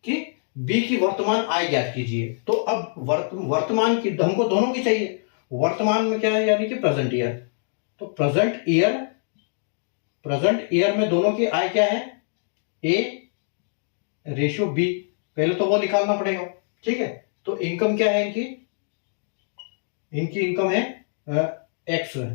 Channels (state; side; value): silent; right; digital silence